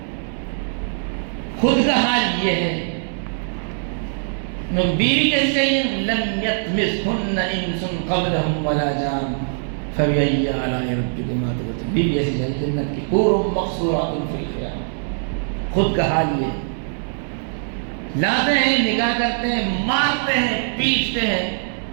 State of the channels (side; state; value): left; silent; digital silence